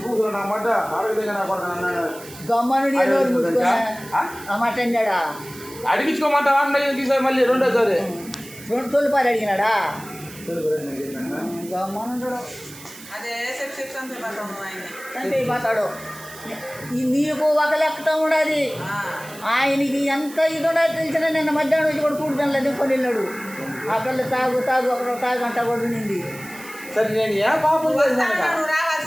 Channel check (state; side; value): noise; right; hiss, 17 dB below the sound